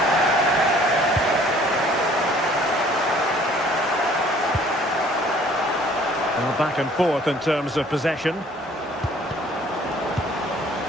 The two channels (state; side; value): normal; both; correlation 0.56